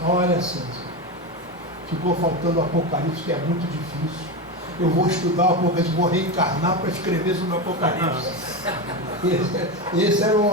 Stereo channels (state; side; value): normal; both; correlation 0.17